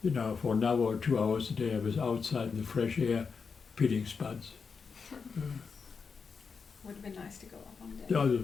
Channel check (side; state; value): right; quieter; 5.4 dB